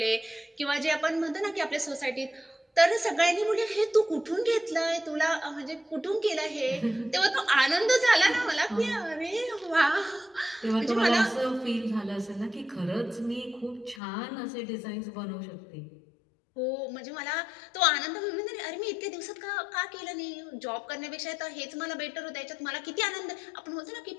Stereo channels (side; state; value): right; drops out; at 14.0 s